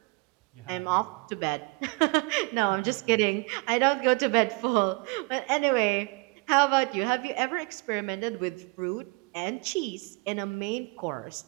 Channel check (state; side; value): quieter; left; 28.8 dB